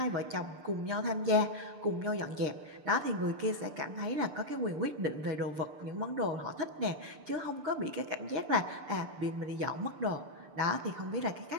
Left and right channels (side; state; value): left; late; 6.7 ms